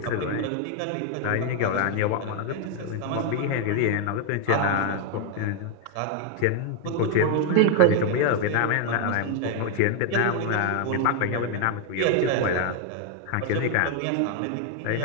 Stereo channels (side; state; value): both; different; correlation 0.00